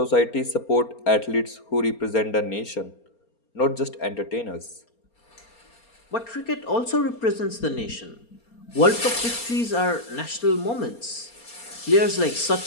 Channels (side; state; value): right; late; 4.3 ms